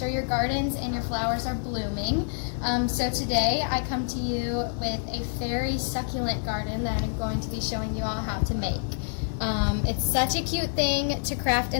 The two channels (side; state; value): right; silent; digital silence